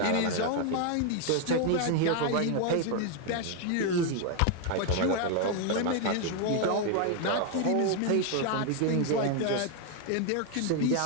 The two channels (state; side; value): different; both; correlation 0.00